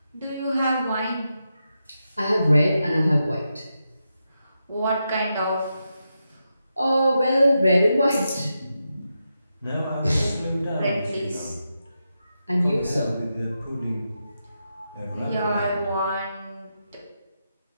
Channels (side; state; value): both; inverted; correlation -0.87